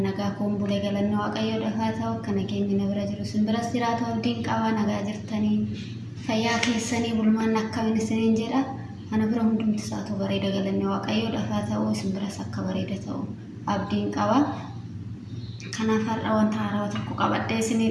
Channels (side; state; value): both; identical; correlation 1.00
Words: nagaa kun bulee galannoo waaqayyoo dhafaa ta'u akka nageenyi na bira jiru simbiras jiraatu abdiin qabaa nagaa jirtanii fayyaa keessanii bulmaan akkamiin isiniin jedha ana bira hundumti isaatu bareeda galannoo waaqayyoo dhafaa ta'u simbiras akka bareeda ta'u abdiin qabaa kanaaf har'a wanta haaraa tokko qabadhee isinii